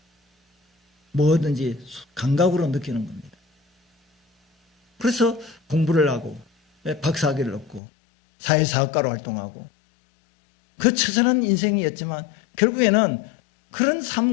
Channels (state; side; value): drops out; right; at 7.8 s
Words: 뭐든지 감각으로 느끼는 겁니다. 그래서 공부를 하고 박사학위를 얻고 사회사업가로 활동하고 그 처절한 인생이었지만 결국에는 그런